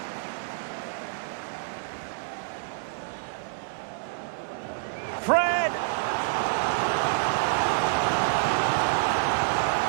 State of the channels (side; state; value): left; silent; digital silence